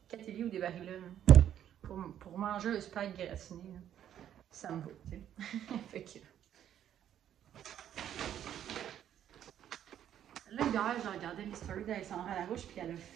Catelli ou des Barilla, pour manger un spag gratiné, là, ça me va, tu sais. Fait que. Là, hier, j'ai regardé les stories d'Alexandra Larouche, puis elle a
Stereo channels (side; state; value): left; quieter; 10.4 dB